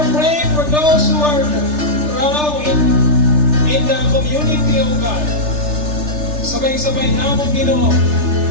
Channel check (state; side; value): late; left; 3.3 ms